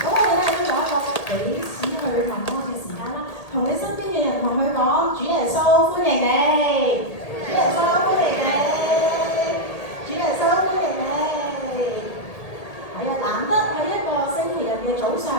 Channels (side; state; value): right; late; 1.8 ms